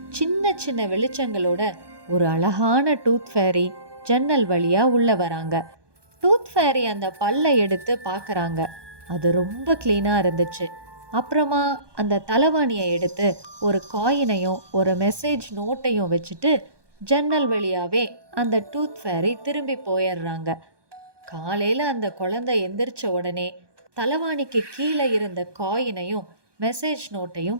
சின்ன சின்ன வெளிச்சங்களோட ஒரு அழகான டூத் ஃபேரி ஜன்னல் வழியா உள்ள வராங்க. டூத் ஃபேரி அந்த பல்லை எடுத்து பார்க்கறாங்க. அது ரொம்ப க்ளீனா இருந்துச்சு. அப்புறமா அந்த தலவாணியை எடுத்து ஒரு காயினையும் ஒரு மெசேஜ் நோட்டையும் வச்சுட்டு ஜன்னல் வழியாவே அந்த டூத் ஃபேரி திரும்பி போயிடுறாங்க. காலையில அந்த குழந்தை எந்திரிச்ச உடனே தலவாணிக்கு கீழே இருந்த காயினையும் மெசேஜ் நோட்டையும்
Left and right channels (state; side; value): late; left; 1.2 ms